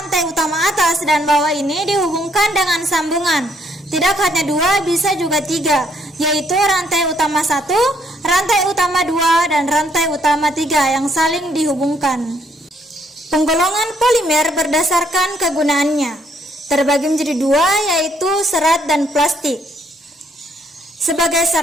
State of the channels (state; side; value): normal; both; correlation 0.68